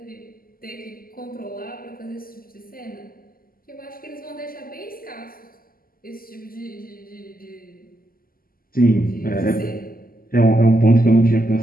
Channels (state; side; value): late; right; 0.42 ms